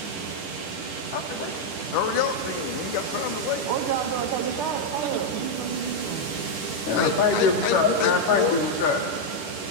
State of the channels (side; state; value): right; late; 10 ms